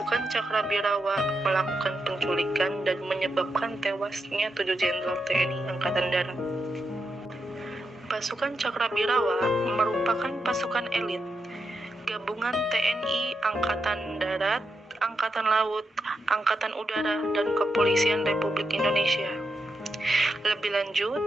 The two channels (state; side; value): normal; both; correlation 0.85